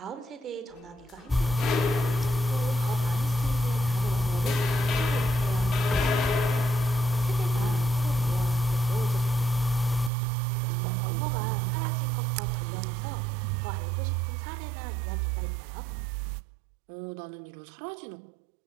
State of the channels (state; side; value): drops out; left; at 10.1 s